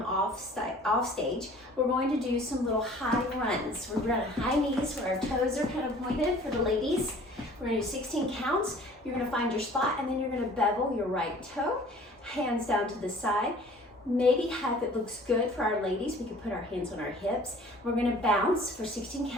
off stage. We're going to do some little high runs. We're going to high knees where our toes are kind of pointed for the ladies. We're going to do 16 counts. You're going to find your spot, and then you're going to bevel your right toe, hands down to the side. Maybe if it looks good for our ladies, we can put our hands on our hips. We're going to bounce for 16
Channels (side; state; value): both; normal; correlation 0.50